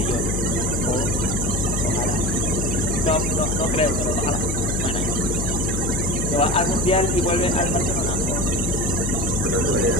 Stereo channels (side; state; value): left; noise; hum, 2 dB below the sound